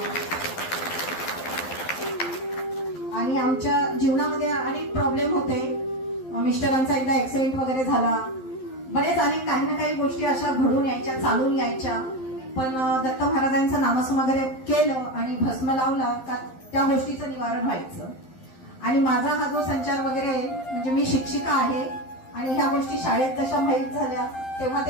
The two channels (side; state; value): right; late; 11 ms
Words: आणि आमच्या जीवनामध्ये अनेक प्रॉब्लेम होते. मिस्टरांचा एकदा ऍक्सिडेंट वगैरे झाला, बरेच अनेक काही ना काही गोष्टी अशा घडून यायच्या, चालून यायच्या. पण दत्त महाराजांचं नामस्मरण वगैरे केलं आणि भस्म लावला का त्या गोष्टीचं निवारण व्हायचं. आणि माझा हा जो संचार वगैरे म्हणजे मी शिक्षिका आहे आणि ह्या गोष्टी शाळेत जशा माहीत झाल्या तेव्हा